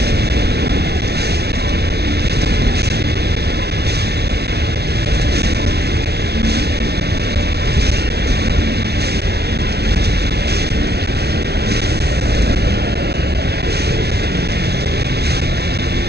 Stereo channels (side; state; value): left; late; 0.48 ms